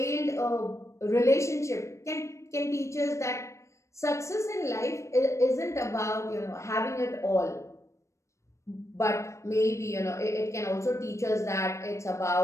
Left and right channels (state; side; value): late; right; 0.14 ms